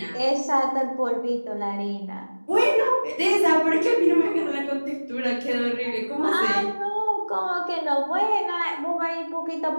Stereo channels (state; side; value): inverted; both; correlation -1.00